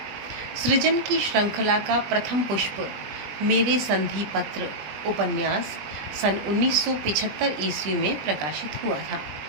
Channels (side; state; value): left; late; 20 ms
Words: सृजन की श्रृंखला का प्रथम पुष्प मेरे संधि पत्र उपन्यास सन 1975 ईस्वी में प्रकाशित हुआ था।